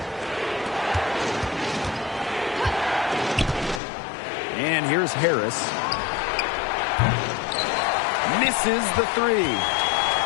And here's Harris. Misses the 3.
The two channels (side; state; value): right; drops out; at 3.8 s